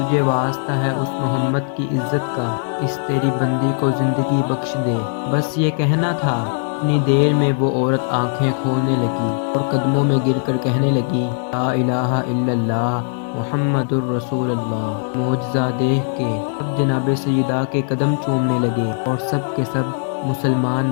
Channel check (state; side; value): silent; right; digital silence